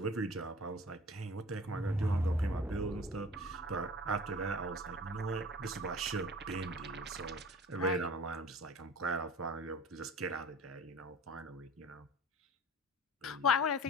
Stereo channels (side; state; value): both; normal; correlation 0.42